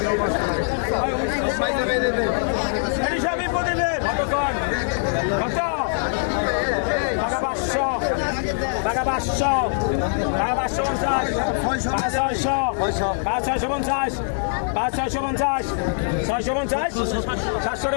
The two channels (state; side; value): silent; right; 56 dB below the other